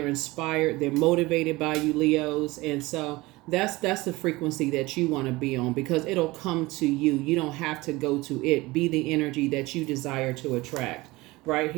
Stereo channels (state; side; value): quieter; left; 21.0 dB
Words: inspired. They're motivated by you, Leos. And so that's the frequency that you want to be on, because it'll come to you. You don't have to go to it. Be the energy that you desire to attract. Right